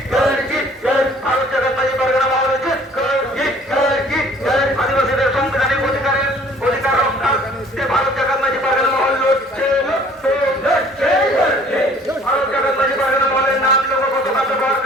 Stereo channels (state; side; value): normal; both; correlation 0.54